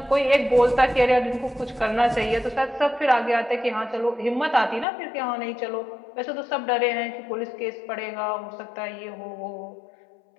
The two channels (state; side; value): drops out; right; at 4.9 s